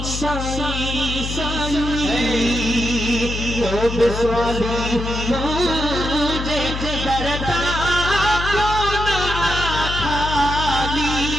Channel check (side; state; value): left; noise; hum, 5 dB below the sound